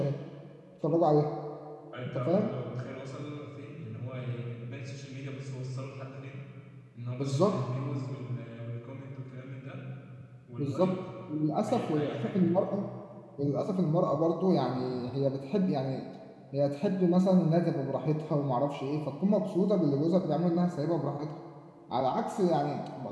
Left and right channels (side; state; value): both; identical; correlation 1.00